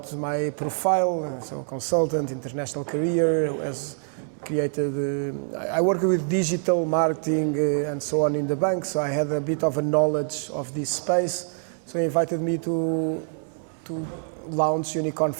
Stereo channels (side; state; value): left; silent; 61 dB below the other